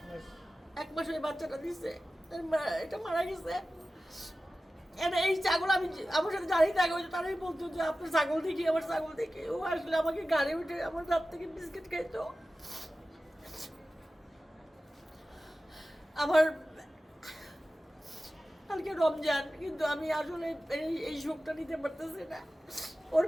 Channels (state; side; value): normal; both; correlation 0.95